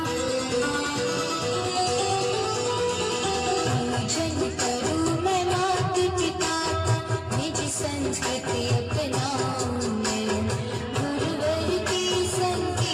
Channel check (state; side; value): identical; both; correlation 1.00